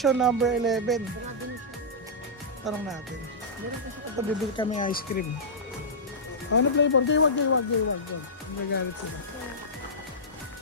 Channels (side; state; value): both; normal; correlation -0.14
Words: number 11. Tanong natin. Ito, bibili kami ice cream. Ano flavor? Gaywag. Nagagalit sila.